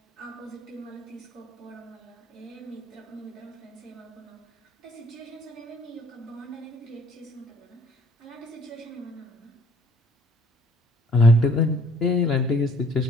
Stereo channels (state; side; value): normal; both; correlation 0.58